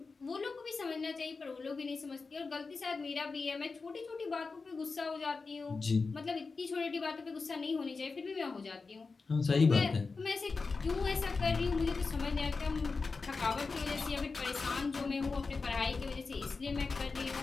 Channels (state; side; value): quieter; right; 4.3 dB